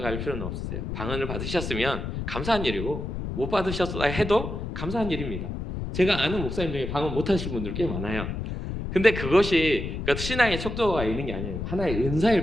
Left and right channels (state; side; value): noise; left; rumble, 5 dB below the sound